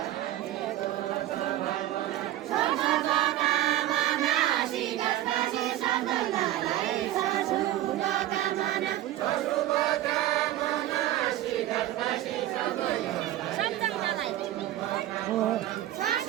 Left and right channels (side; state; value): left; quieter; 14.0 dB